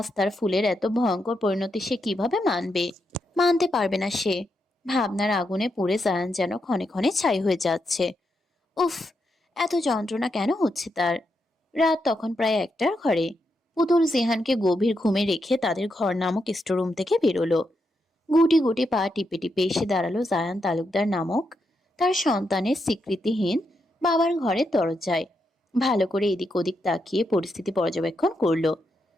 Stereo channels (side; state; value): both; normal; correlation 0.83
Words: তার ফুলের এত ভয়ঙ্কর পরিণতি সে কিভাবে মানবে? মানতে পারবে না সে। ভাবনার আগুনে পুড়ে জায়ান যেন ক্ষণে ক্ষণে ছাই হয়ে যাচ্ছে। উফ, এত যন্ত্রণা কেন হচ্ছে তার? রাত তখন প্রায় 1টার ঘরে। পুতুল জিহানকে গভীর ঘুমে রেখে তাদের ঘর নামক স্টোরুম থেকে বেরোলো। গুটি গুটি পা টিপে টিপে এসে দাঁড়ালো জায়ান তালুকদার নামক তার সন্তানের স্বীকৃতিহীন বাবার ঘরের দরজায়। ভালো করে এদিক ওদিক তাকিয়ে পরিস্থিতি পর্যবেক্ষণ করলো।